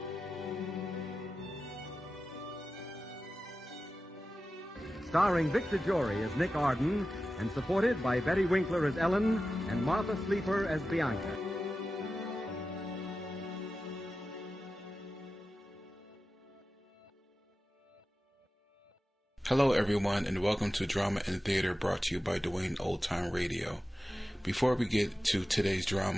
Starring Vic DeJory as Nick Arden, and supported by Betty Winkler as Ellen and Martha Sleeper as Bianca. Hello everyone, and welcome to Drama and Theater, brought to you by Dwayne Old Time Radio. Before we get to today's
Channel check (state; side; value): normal; both; correlation 0.93